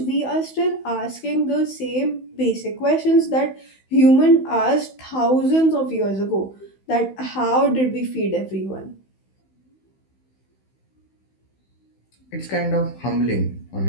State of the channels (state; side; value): late; right; 16 ms